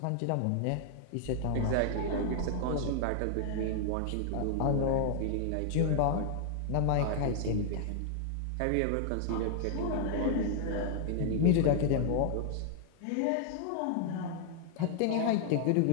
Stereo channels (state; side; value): different; both; correlation 0.00